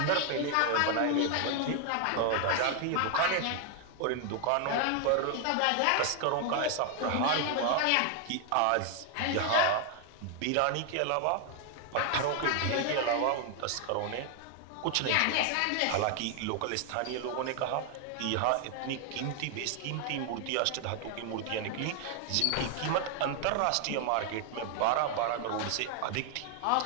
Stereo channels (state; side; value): different; both; correlation 0.00